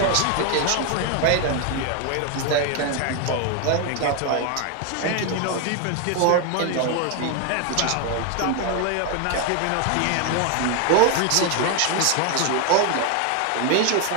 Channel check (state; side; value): different; both; correlation 0.01